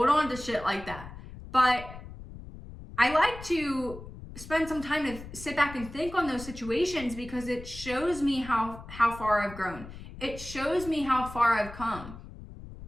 on to shit like that. But I like to spend some time to sit back and think on those situations because it shows me how far I've grown. It shows me how far I've come.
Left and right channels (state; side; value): noise; left; rumble, 14 dB below the sound